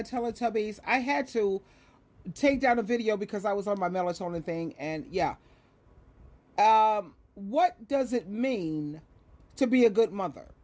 Teletubbies. I had to take down a video because I was on my melatonin thing, and yeah. What does it mean to be a good mother?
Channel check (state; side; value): identical; both; correlation 1.00